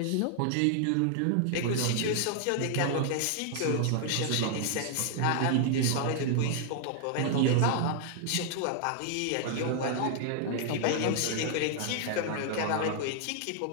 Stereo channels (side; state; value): both; different; correlation 0.00